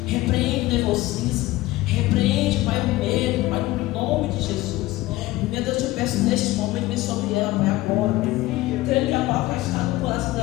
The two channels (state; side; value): quieter; right; 17.8 dB